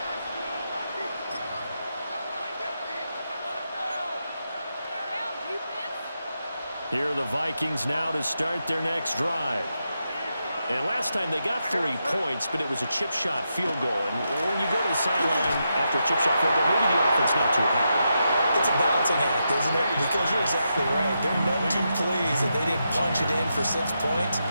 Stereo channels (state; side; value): inverted; both; correlation -0.85